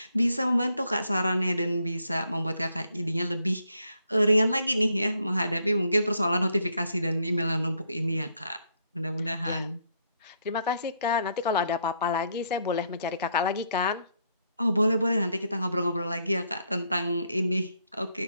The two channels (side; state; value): both; inverted; correlation -0.73